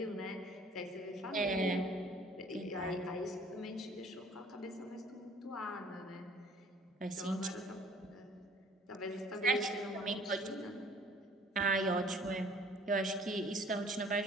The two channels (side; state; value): both; normal; correlation 0.53